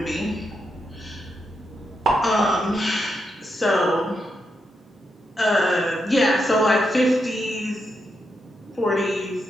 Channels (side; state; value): both; normal; correlation 0.83